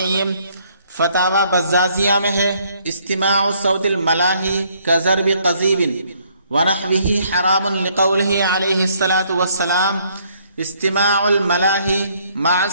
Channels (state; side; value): inverted; both; correlation -0.66